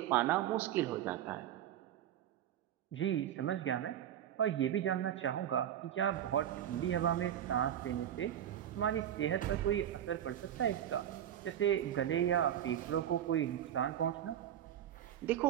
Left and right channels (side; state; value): left; quieter; 10.7 dB